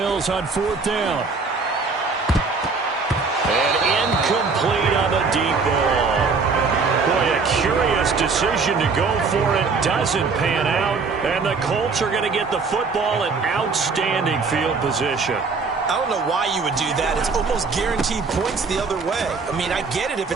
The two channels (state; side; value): quieter; left; 4.6 dB